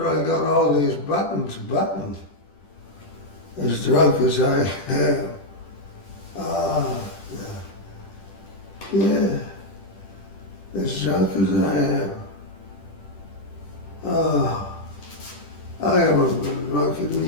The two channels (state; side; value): late; right; 10 ms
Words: I got all these buttons buttoned, as drunk as I am. Yeah, as drunk as I am. I haven't been drunk in